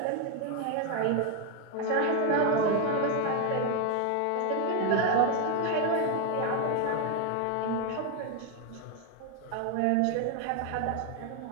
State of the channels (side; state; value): both; different; correlation 0.01